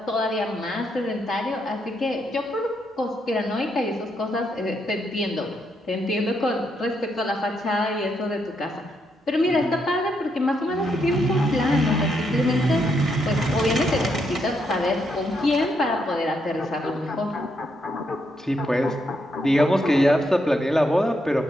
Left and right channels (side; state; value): both; normal; correlation 0.78